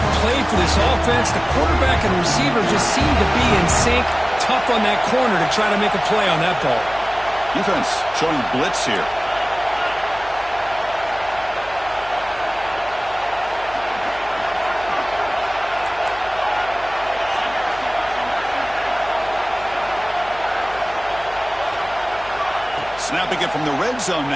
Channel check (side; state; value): left; noise; hum, 20 dB below the sound